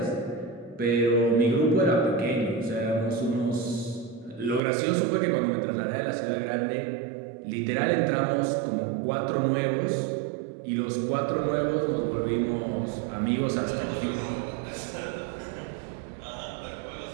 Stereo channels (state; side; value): drops out; left; at 4.6 s